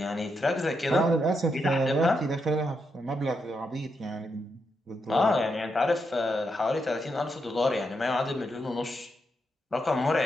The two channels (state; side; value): normal; both; correlation 0.82